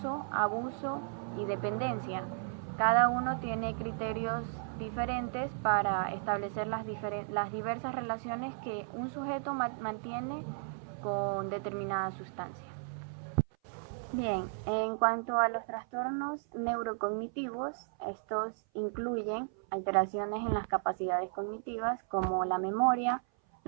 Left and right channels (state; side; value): silent; left; 55 dB below the other